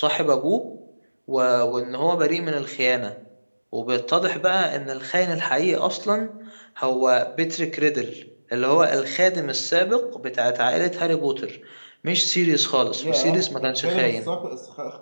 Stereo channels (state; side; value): inverted; both; correlation -1.00